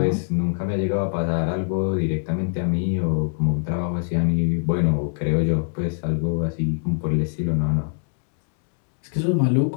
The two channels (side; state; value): right; silent; digital silence